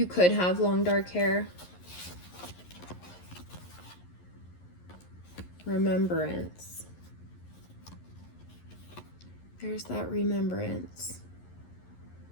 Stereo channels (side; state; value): right; late; 11 ms